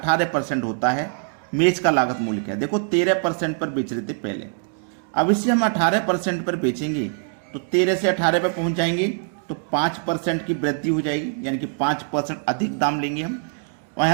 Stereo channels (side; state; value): left; silent; 62 dB below the other